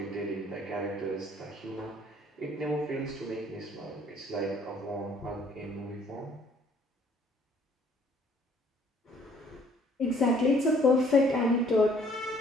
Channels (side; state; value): both; normal; correlation 0.60